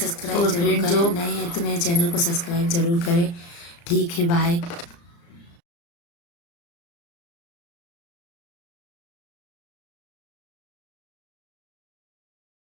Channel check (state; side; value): late; right; 35 ms